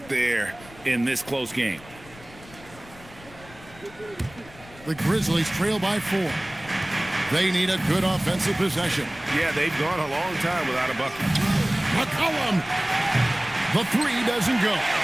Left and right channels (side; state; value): left; noise; rumble, 21 dB below the sound